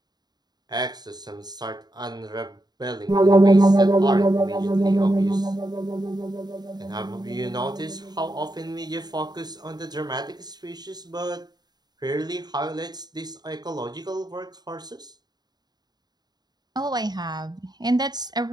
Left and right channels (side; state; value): left; late; 0.20 ms